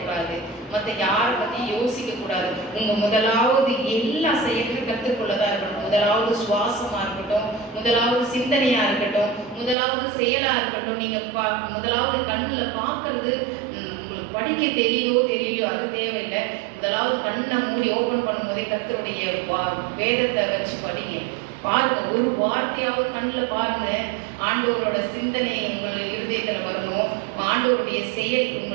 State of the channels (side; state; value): left; drops out; at 9.8 s